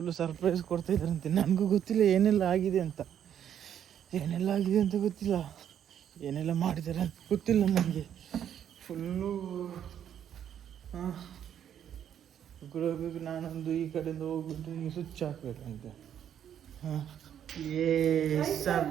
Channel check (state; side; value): quieter; left; 9.6 dB